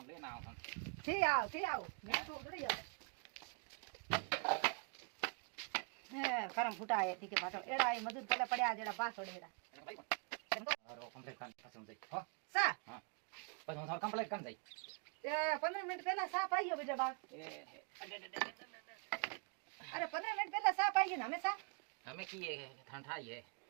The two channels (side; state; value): left; quieter; 35.7 dB